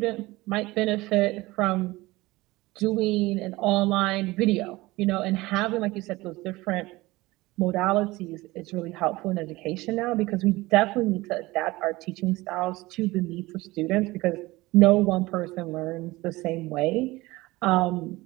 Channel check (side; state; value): left; quieter; 20.2 dB